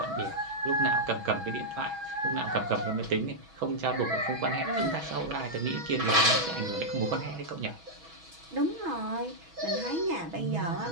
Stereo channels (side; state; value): left; late; 6.2 ms